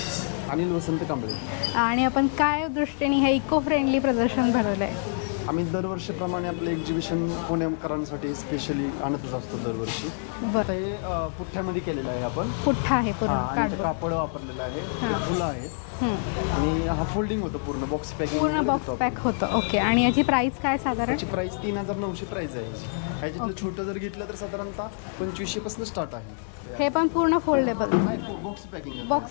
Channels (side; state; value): right; silent; 60 dB below the other